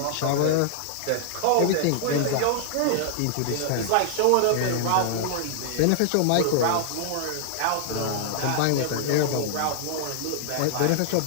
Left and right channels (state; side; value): different; both; correlation -0.01